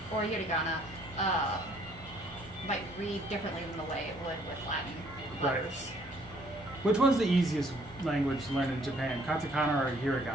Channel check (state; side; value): normal; both; correlation 0.63